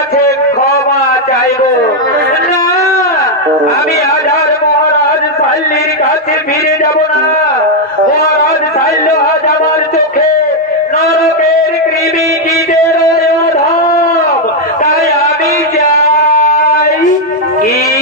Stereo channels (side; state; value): both; normal; correlation 0.01